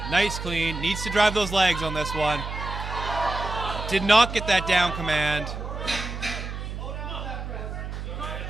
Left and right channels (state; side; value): noise; right; hum, 6 dB below the sound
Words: Nice clean. Needs to drive those legs on this one. Did not get that down command.